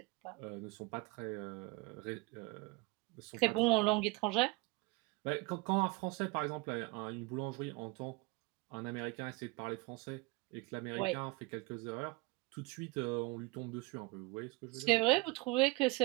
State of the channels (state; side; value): quieter; left; 24.3 dB